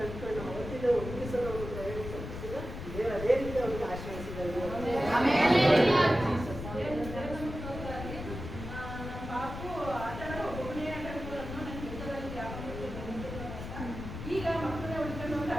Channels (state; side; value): noise; left; rumble, 8 dB below the sound